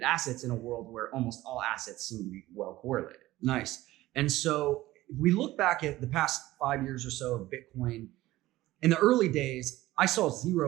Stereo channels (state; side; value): quieter; left; 16.9 dB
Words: assets in a world where almost all assets seem to be well correlated. Nice. And so if we look back at the past 5 years or so of Bitcoin, in the early days, I saw